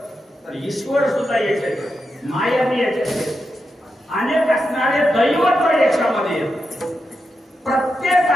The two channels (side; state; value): both; normal; correlation 0.87